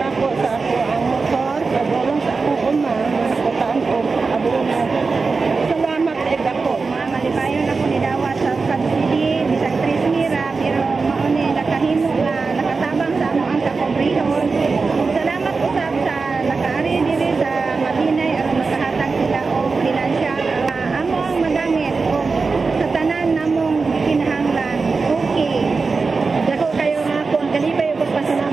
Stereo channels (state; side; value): quieter; left; 4.4 dB